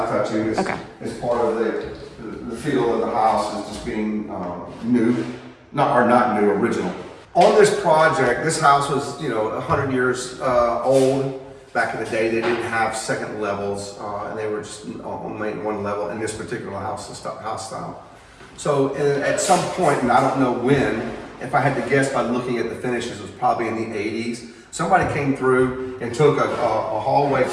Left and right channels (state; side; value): identical; both; correlation 1.00